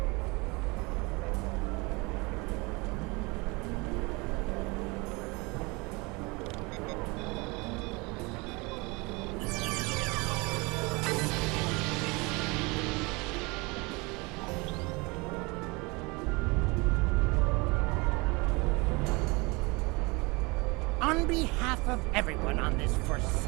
On behalf of everyone on this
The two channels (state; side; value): quieter; left; 26.4 dB